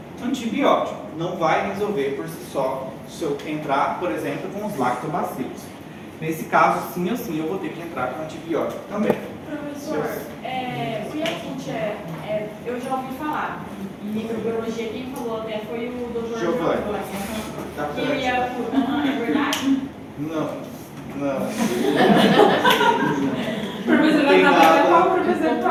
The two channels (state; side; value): identical; both; correlation 1.00